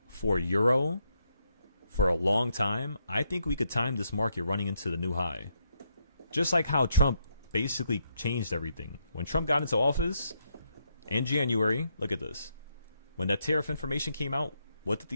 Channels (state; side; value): inverted; both; correlation -0.78